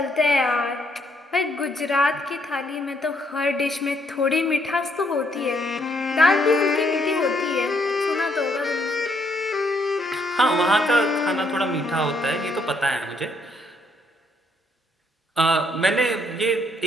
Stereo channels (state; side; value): normal; both; correlation 0.71